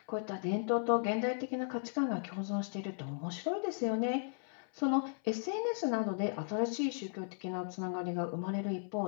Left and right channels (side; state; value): right; silent; 54 dB below the other